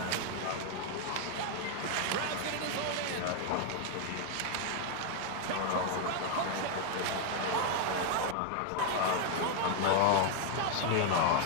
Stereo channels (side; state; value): both; different; correlation 0.00